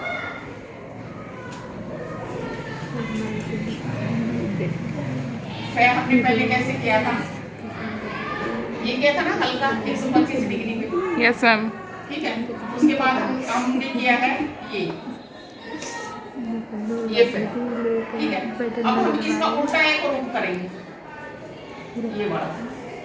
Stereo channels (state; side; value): identical; both; correlation 1.00